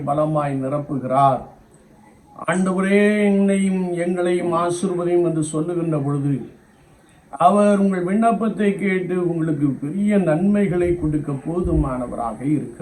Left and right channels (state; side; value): identical; both; correlation 1.00